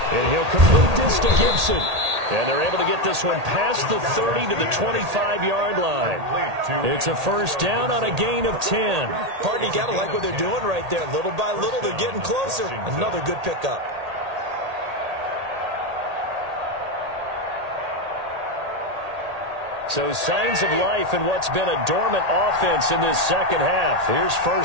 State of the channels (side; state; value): left; late; 1.8 ms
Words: And he'll complete this to Gibson. And they're able to get this one past the 30 to the 25-yard line. It's a 1st down on a gain of 10. Partner, you got to like what they're doing right there. Little by little, they're getting closer. Another good pickup. So signs of life in what's been a dormant offense in this second half. Here's